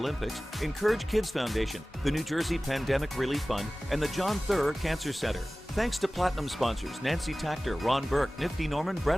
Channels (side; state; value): both; normal; correlation 0.97